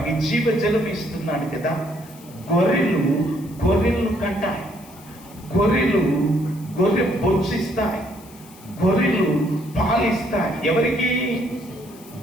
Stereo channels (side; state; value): left; noise; hiss, 23 dB below the sound